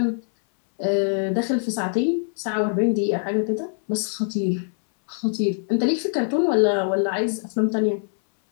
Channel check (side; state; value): right; silent; 62 dB below the other